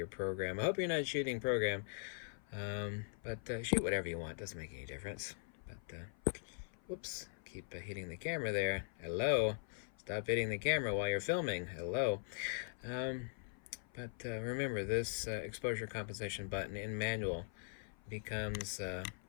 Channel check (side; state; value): right; silent; 50 dB below the other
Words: program. I hope you're not shooting program, but shoot whatever you want. Doesn't make any difference. But whoops, keep hitting the camera there. Hello. Stop hitting the camera while you're filming. Hello. But remember, this exposure compensation button in manual becomes